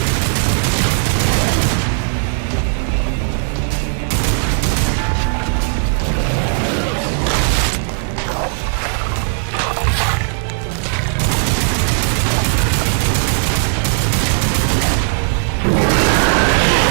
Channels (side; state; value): left; silent; 66 dB below the other